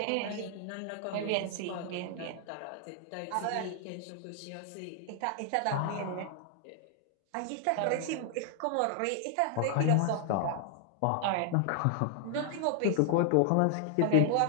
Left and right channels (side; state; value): both; different; correlation 0.00